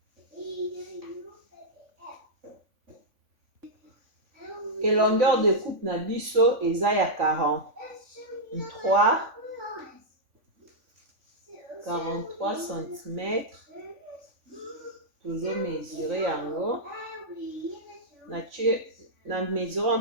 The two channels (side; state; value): left; late; 3.5 ms